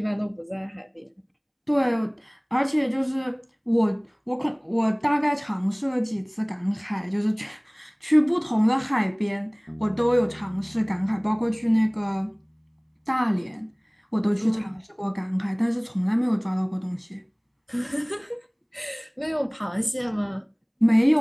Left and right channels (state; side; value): identical; both; correlation 1.00